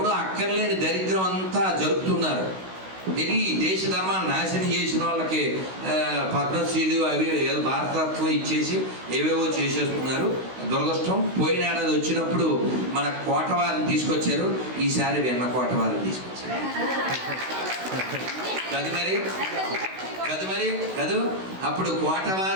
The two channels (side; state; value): left; late; 16 ms